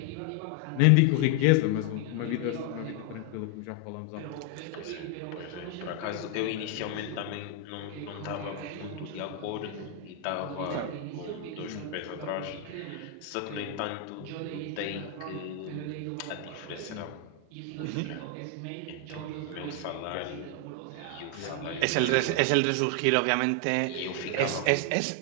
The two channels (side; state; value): both; different; correlation 0.00